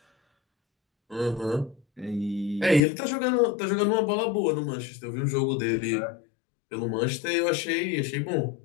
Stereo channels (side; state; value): right; drops out; at 2.8 s